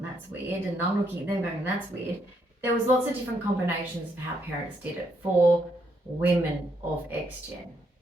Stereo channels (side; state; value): both; normal; correlation 0.75